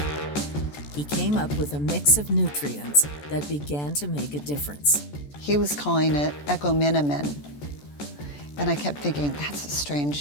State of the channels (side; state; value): right; late; 14 ms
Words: He came up with a mix of nutrients that began to make a difference. He was calling it Equiminimin. And I kept thinking, that's a